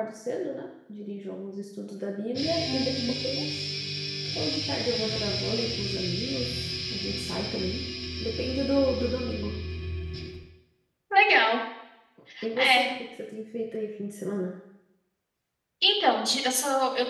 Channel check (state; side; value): identical; both; correlation 1.00